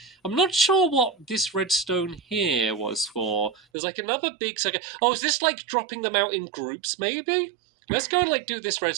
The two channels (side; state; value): left; drops out; at 3.6 s